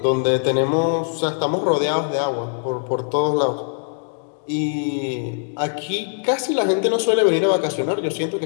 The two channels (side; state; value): right; silent; 65 dB below the other